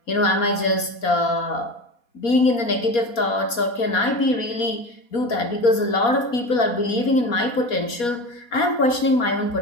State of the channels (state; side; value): late; right; 4.2 ms